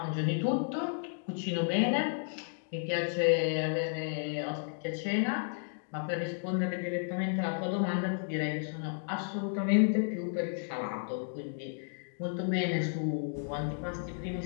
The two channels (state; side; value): silent; right; digital silence